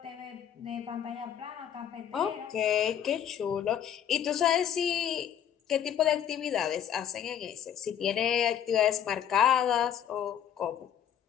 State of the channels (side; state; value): right; quieter; 9.4 dB